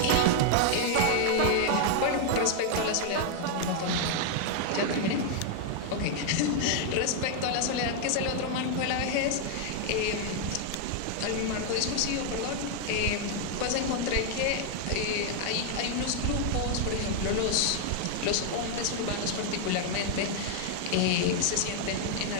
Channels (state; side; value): different; both; correlation 0.00